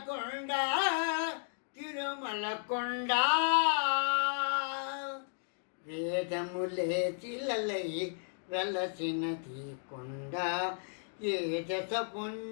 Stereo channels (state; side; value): silent; right; digital silence